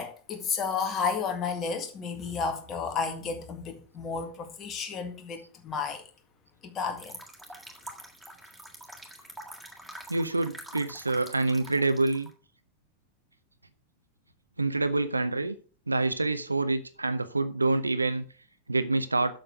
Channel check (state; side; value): inverted; both; correlation -0.60